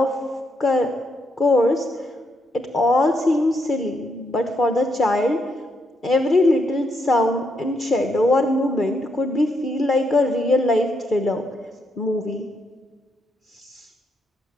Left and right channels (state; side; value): normal; both; correlation 0.78